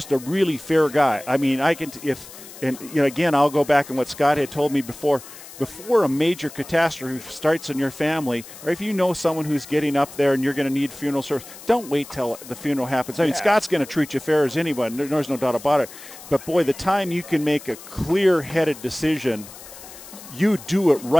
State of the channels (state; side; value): noise; left; hiss, 17 dB below the sound